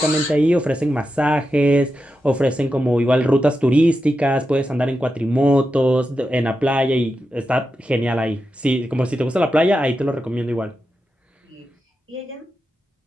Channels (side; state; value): both; normal; correlation 0.89